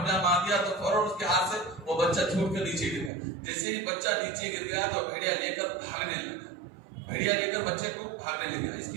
مار دیا تو فوراً اس کے ہاتھ سے وہ بچہ چھوٹ کر نیچے گر گیا. جیسے ہی بچہ نیچے گر گیا تو بھیڑیا لے کر بچے کو بھاگنے لگا. اس کے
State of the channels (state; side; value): drops out; left; at 3.1 s